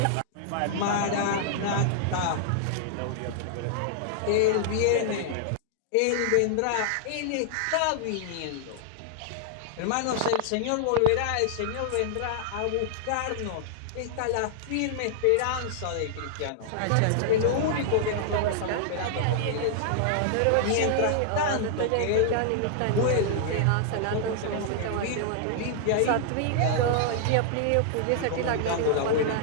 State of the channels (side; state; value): both; different; correlation -0.01